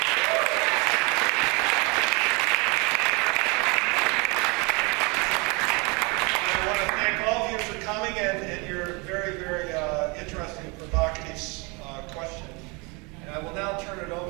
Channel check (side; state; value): left; quieter; 29.3 dB